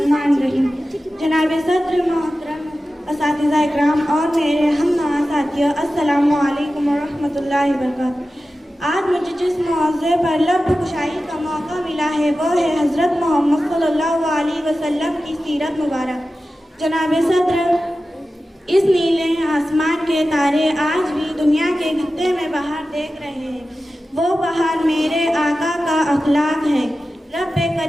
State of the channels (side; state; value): both; normal; correlation 0.94